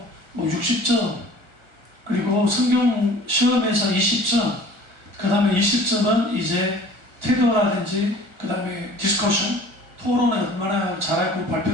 뭐 60점, 그리고 성경 시험에서 20점, 그 다음에 20점은 이제 태도라든지, 그 다음에 디스커션, 토론을 얼마나 잘했고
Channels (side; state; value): left; late; 1.4 ms